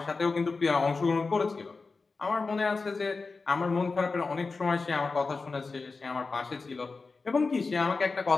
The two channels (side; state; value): right; quieter; 4.1 dB